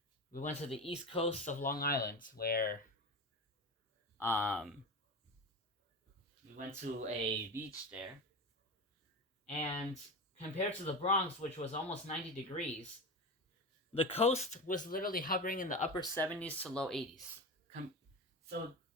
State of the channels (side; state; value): both; normal; correlation 0.25